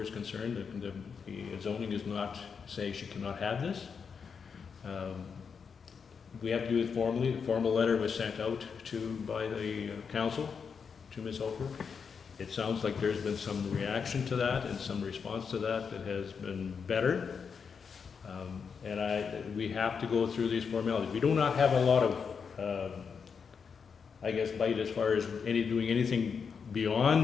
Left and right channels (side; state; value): right; quieter; 6.1 dB